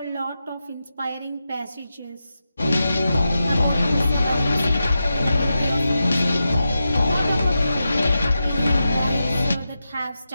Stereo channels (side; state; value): both; inverted; correlation -0.90